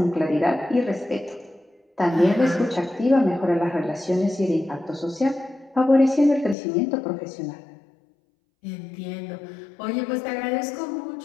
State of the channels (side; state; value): right; drops out; at 6.6 s